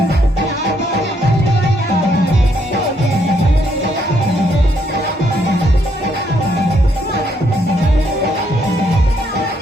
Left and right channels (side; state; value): both; normal; correlation 0.73